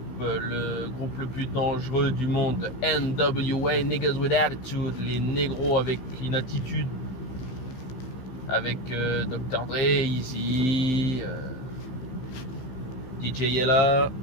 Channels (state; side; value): late; right; 16 ms